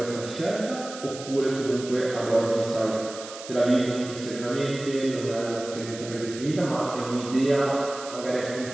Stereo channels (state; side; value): noise; right; hiss, 13 dB below the sound